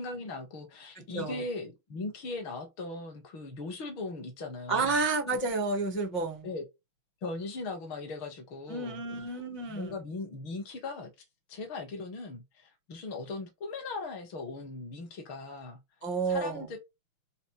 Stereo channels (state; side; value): late; right; 6.1 ms